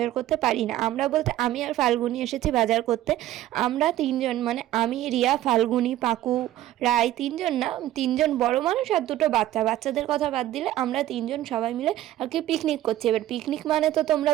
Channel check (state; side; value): quieter; left; 13.9 dB